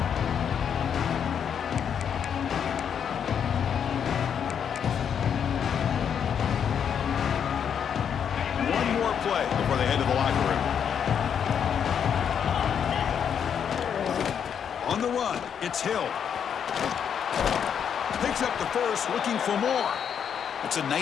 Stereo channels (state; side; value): quieter; right; 7.9 dB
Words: One more play before they head to the locker room. On the run, it's Hill. Picks up the first, looking for more. It's a